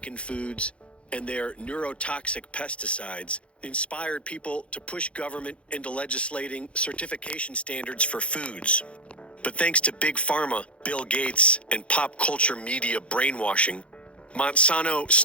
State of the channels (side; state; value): right; late; 0.060 ms